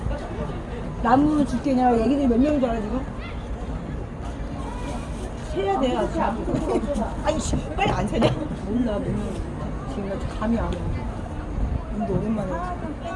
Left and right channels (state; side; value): identical; both; correlation 1.00